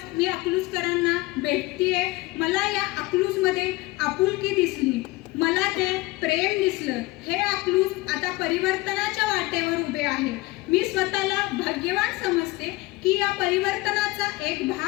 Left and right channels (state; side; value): quieter; right; 20.9 dB